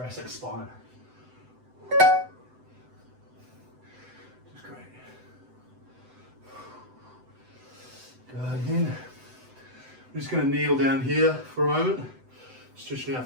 spine. Just great. Good. Again. I'm just going to kneel down here for a moment, stretching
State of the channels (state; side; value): late; left; 7.9 ms